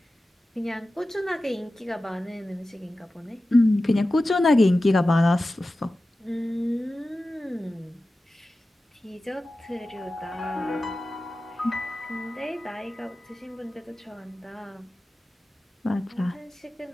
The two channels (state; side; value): normal; both; correlation 0.94